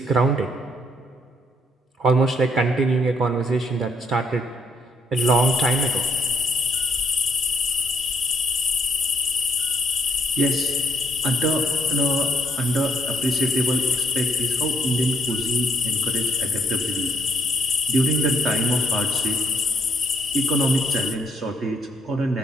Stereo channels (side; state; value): both; normal; correlation 0.70